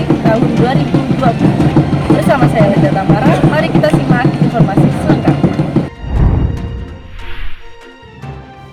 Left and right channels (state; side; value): identical; both; correlation 1.00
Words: tahun 2020. Bersama saya Linda Tamara, mari kita simak informasi selengkapnya.